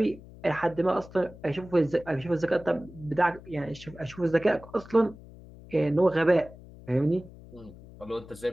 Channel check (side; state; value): left; noise; hum, 19 dB below the sound